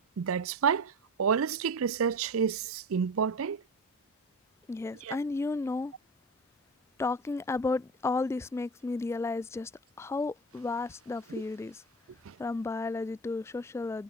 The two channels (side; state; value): both; normal; correlation 0.27